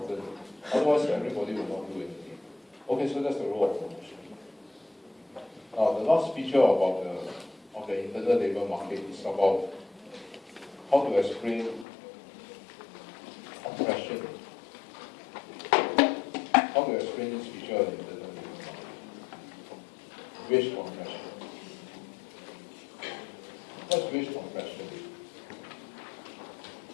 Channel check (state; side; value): drops out; right; at 11.9 s